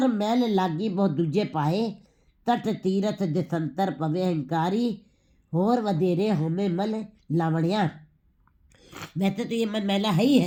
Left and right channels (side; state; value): both; identical; correlation 1.00